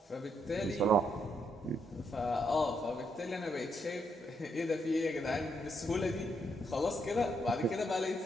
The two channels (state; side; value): normal; both; correlation 0.77